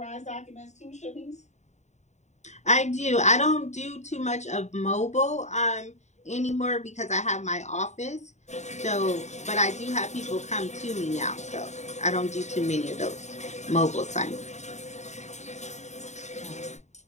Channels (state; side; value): late; right; 0.34 ms